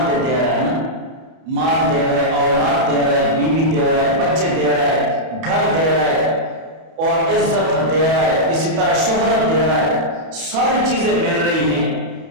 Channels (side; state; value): left; late; 31 ms